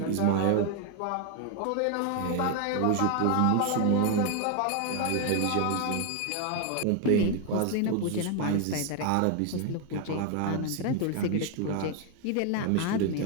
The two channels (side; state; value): both; different; correlation 0.01